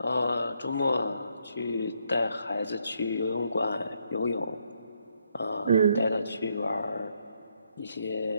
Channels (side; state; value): both; inverted; correlation -0.74